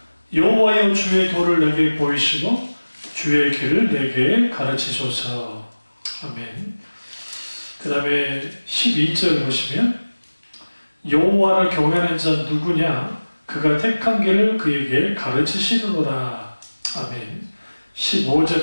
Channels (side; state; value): both; inverted; correlation -1.00